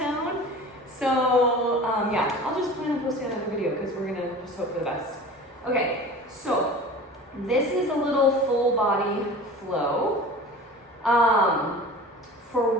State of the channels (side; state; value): both; normal; correlation 0.38